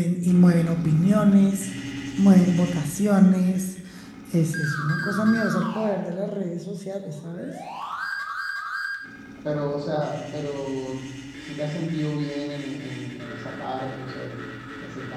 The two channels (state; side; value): identical; both; correlation 1.00